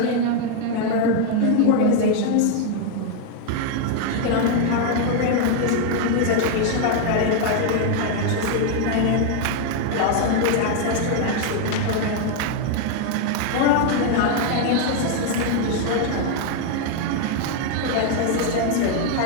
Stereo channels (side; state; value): both; different; correlation 0.00